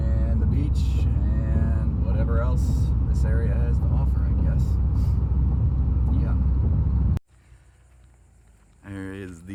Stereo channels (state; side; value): identical; both; correlation 1.00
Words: the beach and whatever else this area has to offer, I guess. Yeah. There is